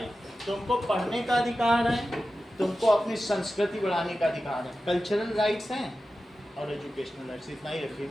तुमको पढ़ने का अधिकार है, तुमको अपनी संस्कृति बढ़ाने का अधिकार है। कल्चरल राइट्स हैं और एजुकेशनल राइट्स, इतना ही रखिए।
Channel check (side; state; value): both; normal; correlation 0.93